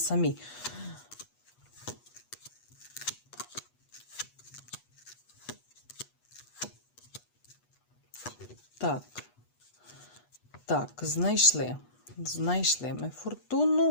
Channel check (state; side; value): late; right; 8.2 ms